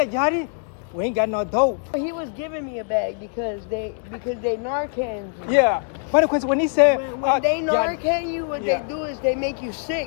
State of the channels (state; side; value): silent; right; 61 dB below the other